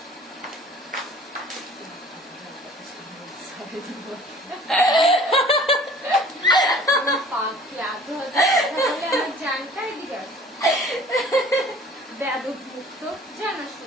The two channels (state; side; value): normal; both; correlation 0.49